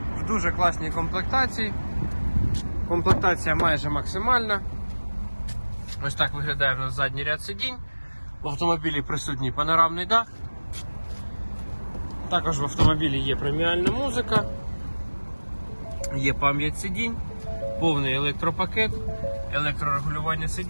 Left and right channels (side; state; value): both; inverted; correlation -1.00